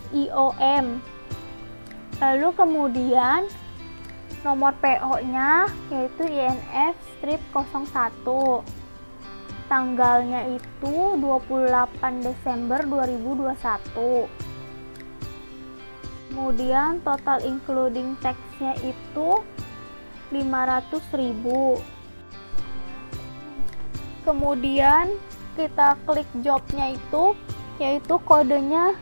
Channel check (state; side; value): inverted; both; correlation -1.00